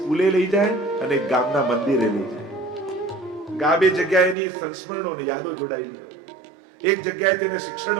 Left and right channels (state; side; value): drops out; left; at 4.4 s